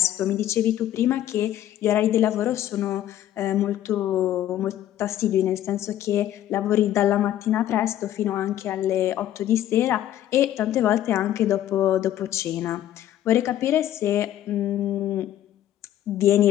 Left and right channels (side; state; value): right; quieter; 12.3 dB